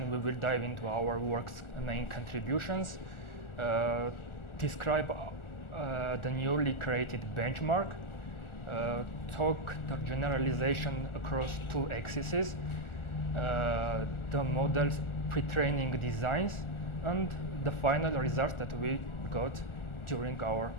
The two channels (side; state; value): right; late; 1.4 ms